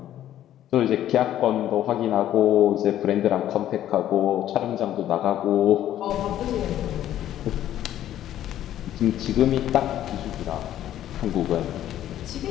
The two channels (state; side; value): quieter; right; 12.0 dB